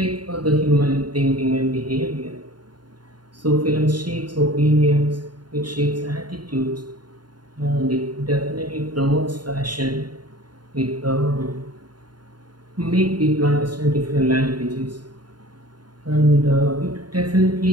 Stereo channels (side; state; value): left; late; 0.71 ms